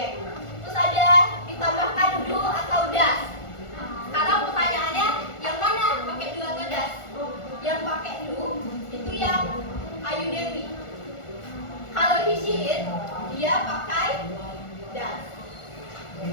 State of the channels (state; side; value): late; right; 1.4 ms